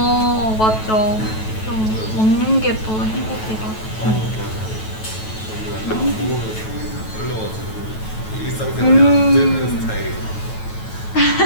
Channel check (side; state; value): right; late; 9.2 ms